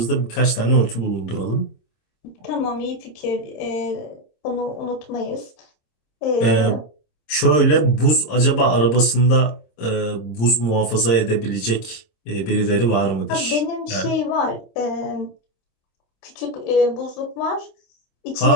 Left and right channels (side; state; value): right; late; 26 ms